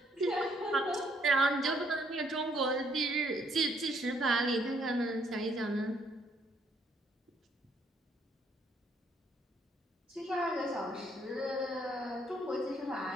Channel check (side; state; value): both; normal; correlation 0.69